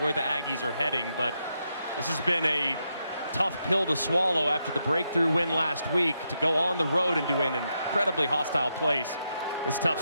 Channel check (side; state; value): both; inverted; correlation -0.82